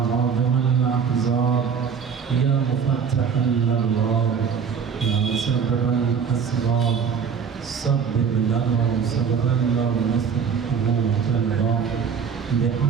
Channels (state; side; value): quieter; left; 6.7 dB